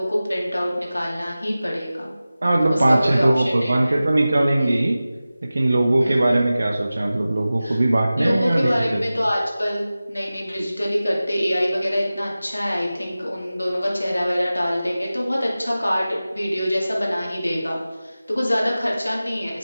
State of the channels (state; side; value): inverted; both; correlation -0.96